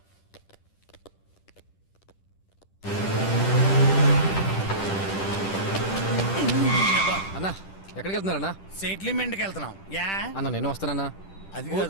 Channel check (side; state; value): right; late; 10 ms